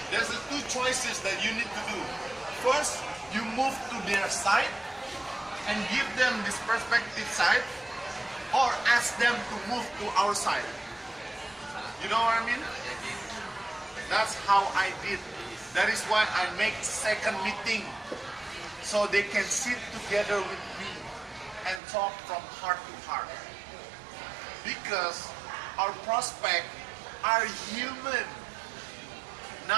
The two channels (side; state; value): left; drops out; at 21.8 s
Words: there's the two choices that you need to do. First, you move to their side and give them this perspective side, or ask them to move to our side. You know what I mean? That's how I did. That is why I make second meeting, so they can sit together with me and talk from heart to heart. Because our prospects are human,